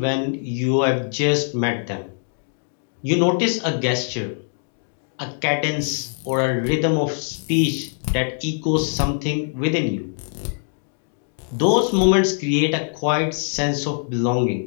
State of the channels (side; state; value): right; silent; digital silence